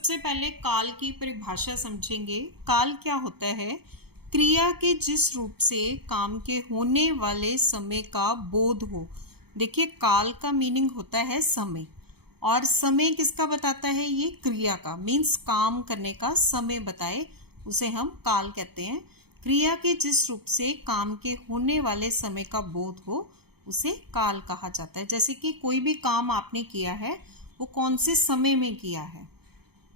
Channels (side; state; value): left; late; 0.96 ms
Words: पहले काल की परिभाषा समझेंगे। काल क्या होता है? क्रिया के जिस रूप से काम के होने वाले समय का बोध हो। देखिए, काल का मीनिंग होता है समय, और समय किसका बताता है? ये क्रिया का, मीन्स काम करने का समय बताए उसे हम काल कहते हैं। क्रिया के जिस रूप से काम के होने वाले समय का बोध हो उसे काल कहा जाता है। जैसे कि कोई भी काम आपने किया है वो कौन से समय में किया है,